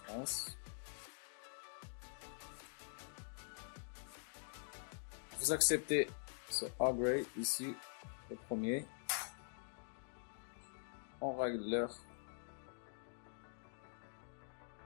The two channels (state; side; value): silent; right; digital silence